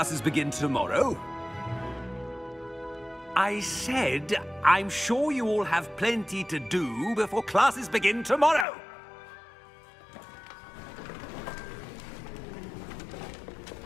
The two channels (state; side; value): drops out; right; at 8.7 s